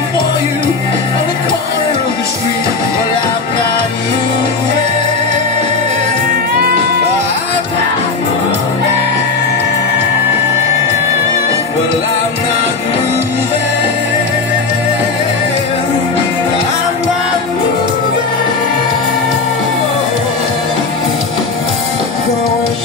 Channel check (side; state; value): right; quieter; 4.3 dB